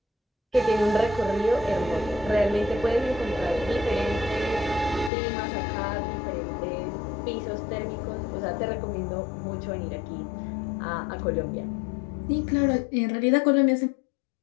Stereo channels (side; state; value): right; drops out; at 5.1 s